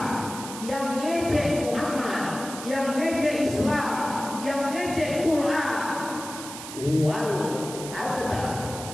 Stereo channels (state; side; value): noise; right; hiss, 11 dB below the sound